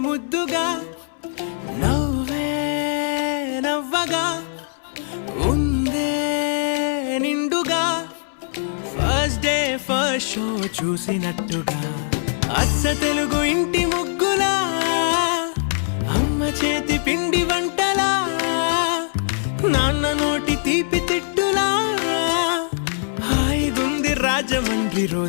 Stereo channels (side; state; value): right; silent; 60 dB below the other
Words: ముద్దుగా నవ్వే నవ్వగా ఉందే నిండుగా ఫస్ట్ డే ఫస్ట్ షో చూసినట్టుగా అచ్చ తెలుగు ఇంటి ముగ్గులా అమ్మ చేతి పిండి వంటలా నాన్న నోటి తీపి తిట్టులా హాయిగుంది రాజమండ్రి